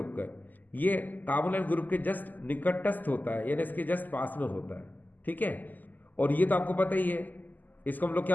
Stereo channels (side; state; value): right; late; 0.084 ms